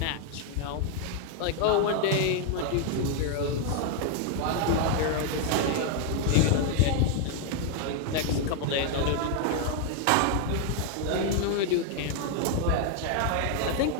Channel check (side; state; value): both; different; correlation 0.00